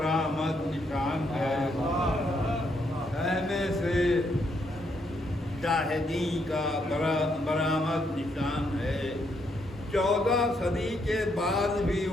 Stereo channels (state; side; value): normal; both; correlation 0.75